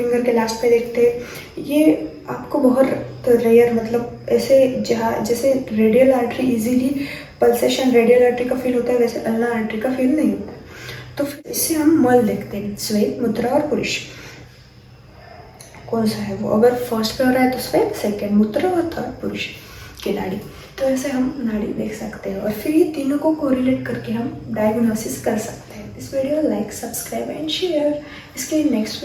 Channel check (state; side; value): identical; both; correlation 1.00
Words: के लास्ट पे देखते हैं। ये आपको बहुत रेयर, मतलब ऐसे जहाँ जैसे radial artery easily pulsation radial artery का फील होता है, वैसे अल्ना आर्टरी का फील नहीं होता। तो फिर इससे हम मल देखते हैं, स्वेद, मुद्रा और पुरुष कौन सा है वो। अगर फर्स्ट पे हो रहा है तो स्वेद, सेकेंड मुद्रा और थर्ड पुरुष की नाड़ी। तो ऐसे हम नाड़ी देख सकते हैं और फिर ये तीनों को कोरिलेट करके हम डायग्नोसिस कर सकते हैं। इस video like, subscribe and share. इसके नेक्स्ट